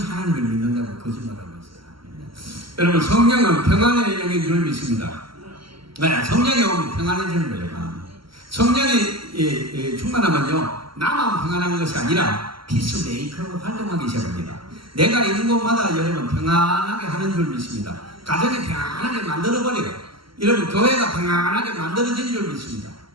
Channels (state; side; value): late; left; 0.74 ms